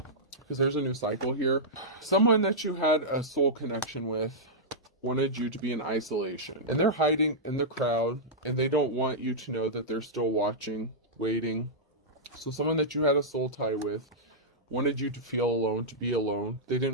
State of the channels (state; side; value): normal; both; correlation -0.11